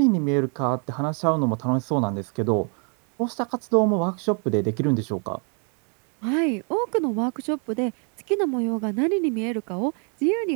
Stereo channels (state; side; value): quieter; left; 38.8 dB